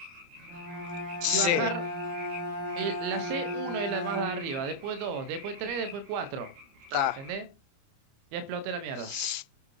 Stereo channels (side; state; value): left; late; 29 ms